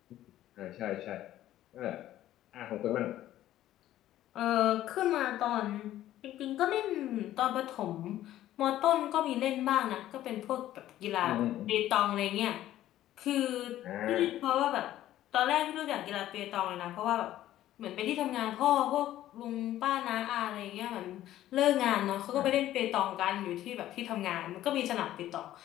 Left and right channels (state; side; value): quieter; right; 13.4 dB